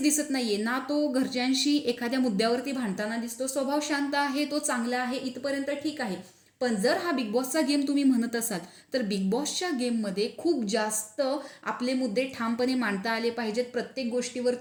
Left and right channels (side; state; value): both; identical; correlation 1.00